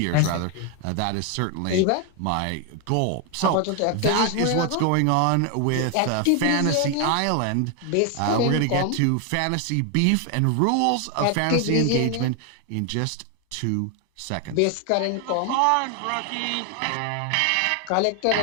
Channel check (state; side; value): different; both; correlation 0.00